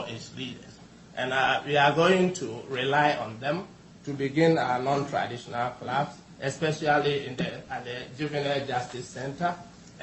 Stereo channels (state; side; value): identical; both; correlation 1.00